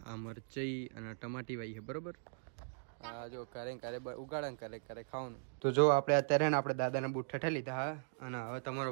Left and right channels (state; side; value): silent; left; digital silence